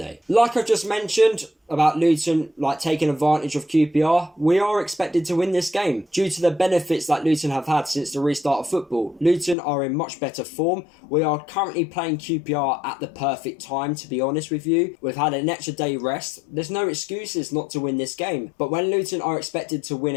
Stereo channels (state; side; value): drops out; right; at 9.6 s